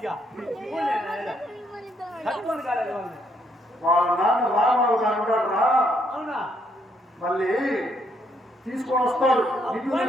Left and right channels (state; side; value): normal; both; correlation 0.72